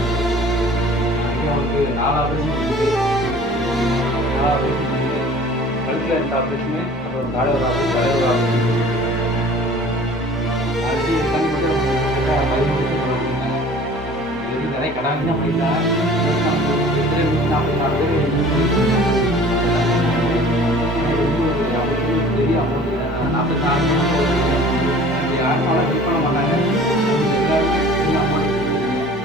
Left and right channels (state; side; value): normal; both; correlation 0.47